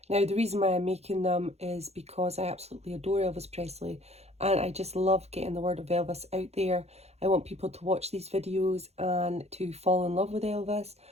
Now the reason why I'm making them is because I absolutely adore Elvis Presley and I just love getting the word of Elvis out there. I want people to watch these videos and to fall in love with Elvis,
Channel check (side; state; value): left; late; 0.31 ms